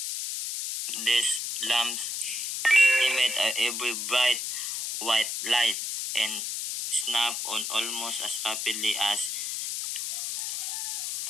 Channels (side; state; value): left; noise; hiss, 3 dB below the sound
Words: These lamps emit a very bright white light and snap on almost as rapidly as